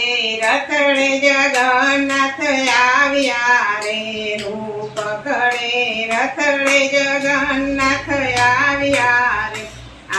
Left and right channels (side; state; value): both; identical; correlation 1.00